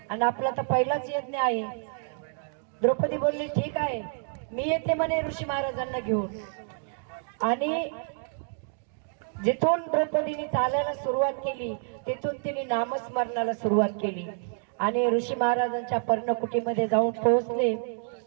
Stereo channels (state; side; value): silent; left; 59 dB below the other